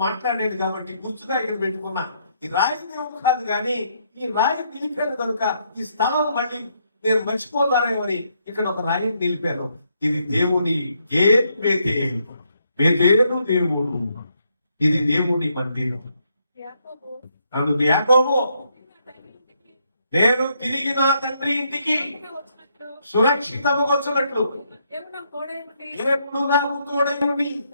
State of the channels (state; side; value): inverted; both; correlation -0.75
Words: మాట్లాడాడు కాబట్టి గుర్తుగా ఇక్కడ పెట్టుకున్నా. ఈ రాయి దేవుడు కాదు కానీ ఈ రాయి నిలిపాను కనుక ఈ స్థలం మళ్ళీ నేను మర్చిపోతానేమని ఇక్కడ ఒక రాయిని నిలిపాను. ఇది దేవుని బేతేలు దేవుడు, ఇది దేవుని మందిరం. అందుకు యాకోబు నేను తిరిగి నా తండ్రి ఇంటికి సురక్షితముగా వచ్చినట్లు దేవుడు నాకు తోడై